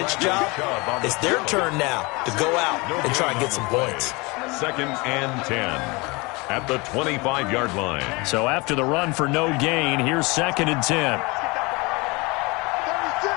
job, it's their turn now to go out and try and get some points. 2nd and 10 at the 25-yard line. So after the run for no gain, here's 2nd and 10.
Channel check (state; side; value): quieter; right; 26.0 dB